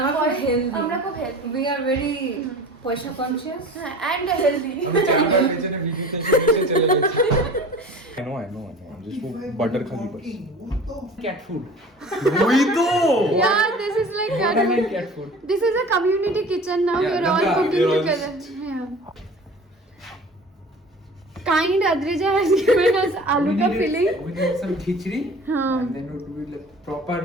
আমরা খুব হেলদি, আমরা খুব হেলদি, উই আর ভেরি পয়সা কনসিয়াস। হ্যাঁ, and healthy. I know. I'm just for butter khali bas. Cat food. Yeah, this is like Cat food. this is a community kitchen now. Yeah, We're all Ganga, cooking we're all together. Yeah. Kind Adrija has given us aloo ka filling. We need some khichdi. हाँ. And then we do like proper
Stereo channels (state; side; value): normal; both; correlation 0.41